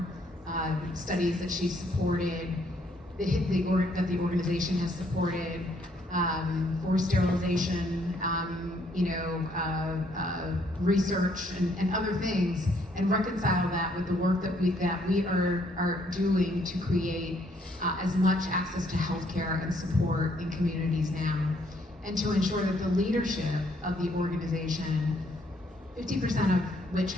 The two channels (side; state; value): both; normal; correlation 0.68